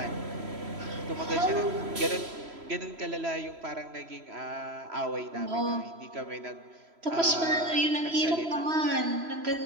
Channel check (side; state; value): left; late; 3.0 ms